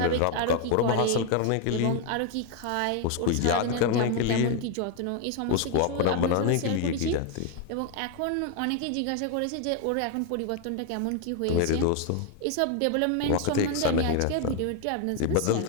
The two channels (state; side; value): different; both; correlation 0.01